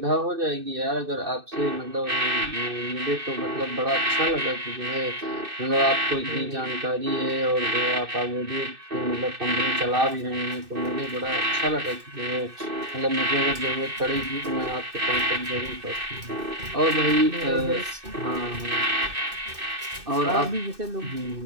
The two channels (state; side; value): late; left; 2.6 ms